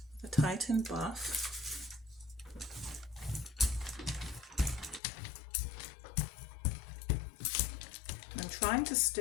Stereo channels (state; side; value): drops out; right; at 5.0 s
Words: the Titan buff. I'm trying to